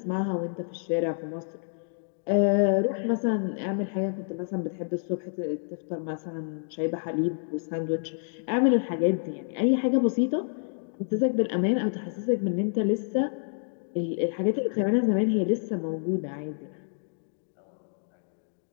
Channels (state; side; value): silent; right; digital silence